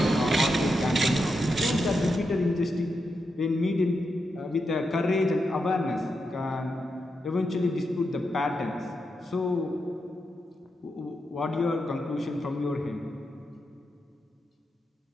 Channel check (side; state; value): both; normal; correlation 0.86